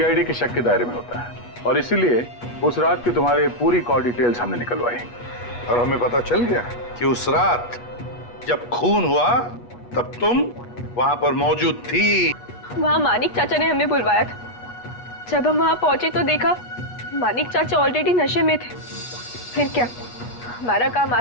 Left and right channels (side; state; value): right; late; 8.3 ms